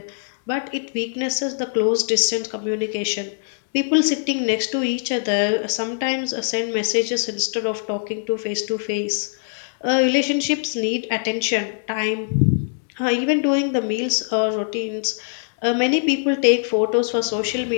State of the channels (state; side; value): silent; right; digital silence